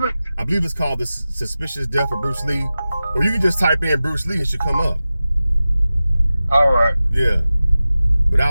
it? I believe it's called The Suspicious Death of Bruce Lee, or you can just type in Bruce Lee and it should come up. All right. Yeah. But I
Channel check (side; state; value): both; inverted; correlation -0.95